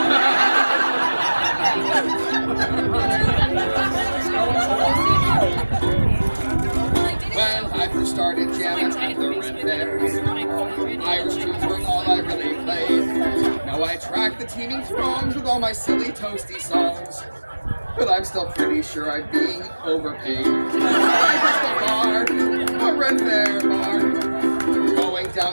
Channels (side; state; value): both; inverted; correlation -1.00